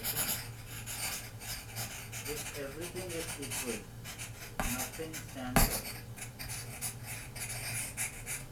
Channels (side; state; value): both; identical; correlation 1.00